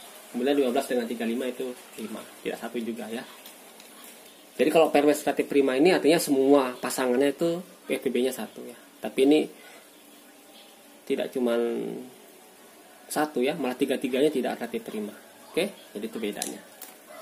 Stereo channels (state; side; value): identical; both; correlation 1.00